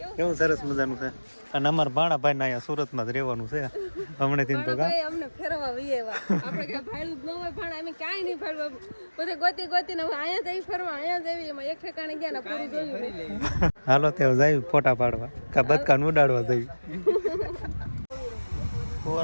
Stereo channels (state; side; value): inverted; both; correlation -1.00